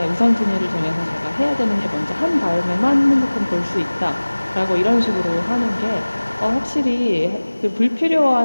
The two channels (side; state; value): both; inverted; correlation -1.00